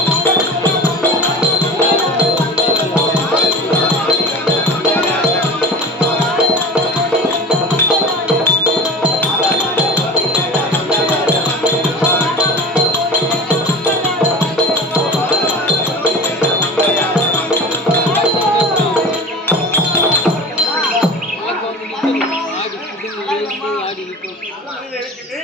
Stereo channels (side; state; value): both; normal; correlation 0.35